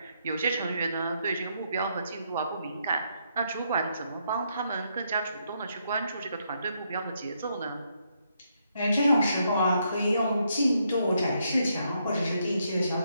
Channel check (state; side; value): inverted; both; correlation -0.77